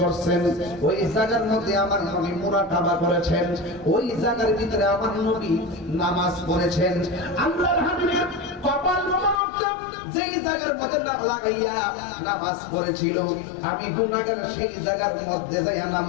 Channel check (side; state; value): right; drops out; at 9.4 s